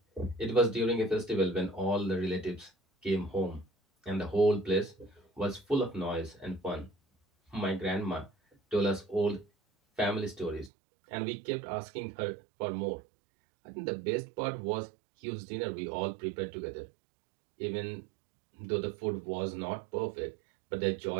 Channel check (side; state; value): left; drops out; at 10.7 s